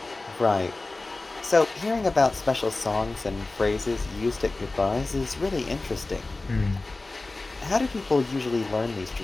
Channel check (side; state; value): right; quieter; 3.2 dB